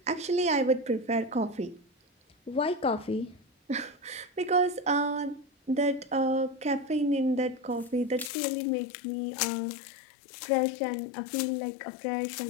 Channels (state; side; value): drops out; right; at 8.3 s